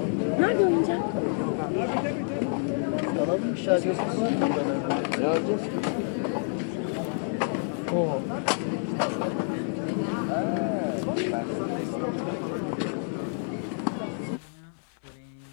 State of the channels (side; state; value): right; silent; 59 dB below the other